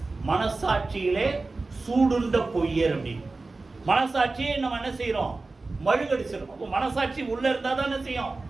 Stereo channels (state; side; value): quieter; left; 3.5 dB